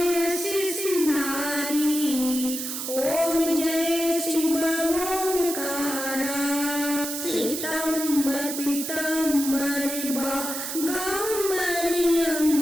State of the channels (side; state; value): right; noise; hiss, 5 dB below the sound